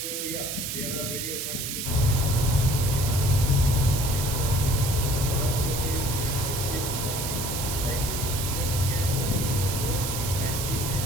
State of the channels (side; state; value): right; noise; hiss, 4 dB below the sound